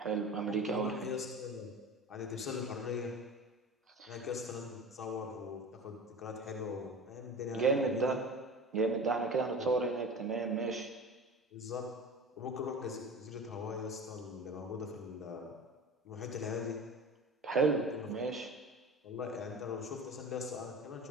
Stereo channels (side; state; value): both; normal; correlation 0.34